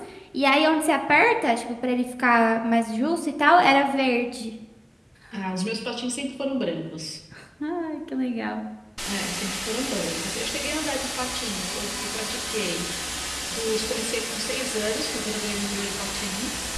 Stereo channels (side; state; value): both; identical; correlation 1.00